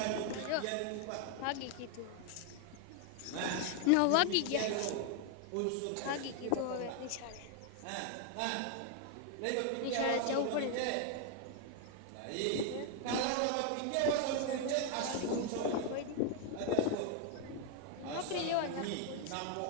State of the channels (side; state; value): both; different; correlation 0.00